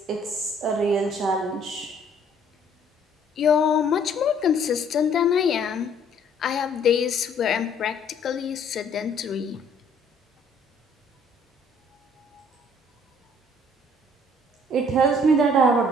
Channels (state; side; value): normal; both; correlation 0.60